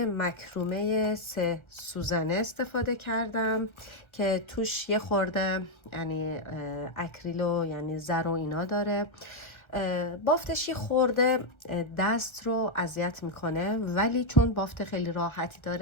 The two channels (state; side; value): late; right; 1.3 ms